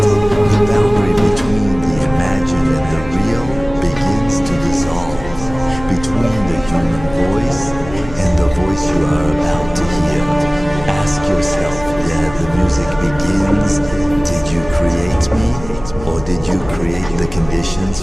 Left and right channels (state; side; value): noise; left; hum, 14 dB below the sound